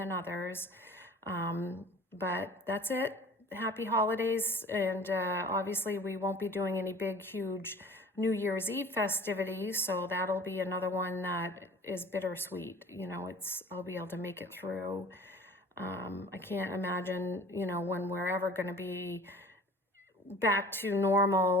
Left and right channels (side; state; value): both; normal; correlation 0.45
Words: others. But that's it. Happy holidays. And obviously we won't be doing any big, huge New Year's Eve festivities, so that'll be another one that is bittersweet. I'll be able to make it through. I can't imagine, when we're ever going to be back to